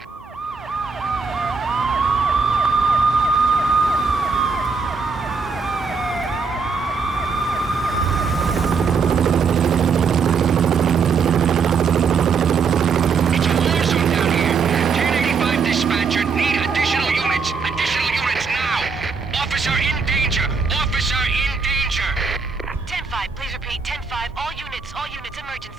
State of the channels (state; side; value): quieter; left; 5.2 dB